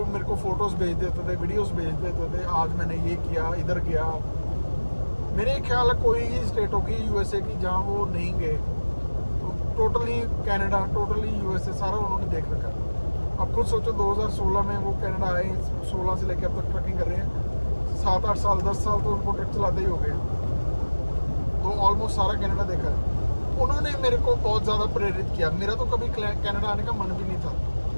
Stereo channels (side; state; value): both; inverted; correlation -1.00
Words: मेरे को फोटोज़ भेज देते थे, वीडियोस भेज देते थे, आज मैंने ये किया, इधर गया। मेरे ख्याल है कोई ही स्टेट होगी यूएसए की जहाँ वो नहीं गए। तो टोटली कनाडा, टोटली यूएसए सारा उन्होंने देख रखा है। अब खुद सोचो 2016 में वो कनाडा आए, 16 से लेकर अब तक ट्रकिंग कर रहे हैं। 7-8 साल 10 साल तो उनको ट्रक चलाते ही हो गए, तो ऑलमोस्ट सारा कनाडा देखा है। उन्होंने मेरे को बहुत ज़्यादा प्रेरित किया। मेरा तो कभी कनाडा आने का मन भी नहीं था,